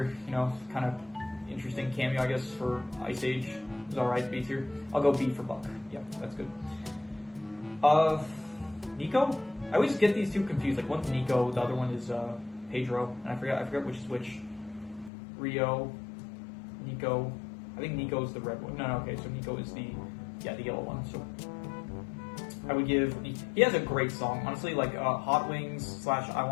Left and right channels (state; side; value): drops out; right; at 15.1 s